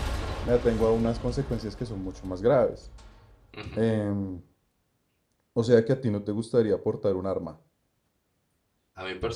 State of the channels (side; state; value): both; identical; correlation 1.00